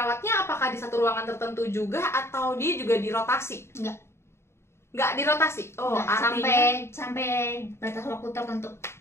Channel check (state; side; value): late; right; 0.13 ms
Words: apakah di satu ruangan tertentu juga atau dia juga dirotasi? Enggak dirotasi. Artinya sampai batas waktu tertentu.